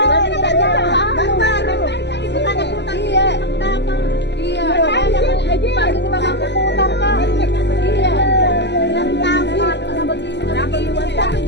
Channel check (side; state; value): right; late; 0.50 ms